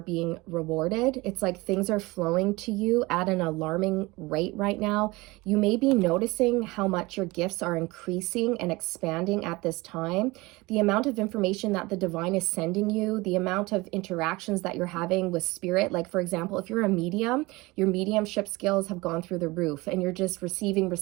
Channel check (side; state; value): left; quieter; 22.3 dB